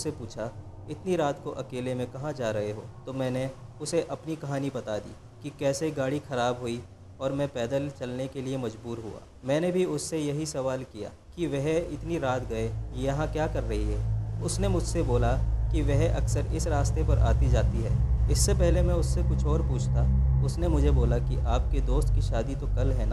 पूछा, इतनी रात को अकेले में कहाँ जा रहे हो? तो मैंने उसे अपनी कहानी बता दी कि कैसे गाड़ी ख़राब हुई और मैं पैदल चलने के लिए मजबूर हुआ। मैंने भी उससे यही सवाल किया कि वह इतनी रात गए यहाँ क्या कर रही है। उसने मुझसे बोला कि वह अक्सर इस रास्ते पर आती जाती है। इससे पहले मैं उससे कुछ और पूछता, उसने मुझे बोला कि आपके दोस्त की शादी तो कल है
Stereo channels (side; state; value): both; identical; correlation 1.00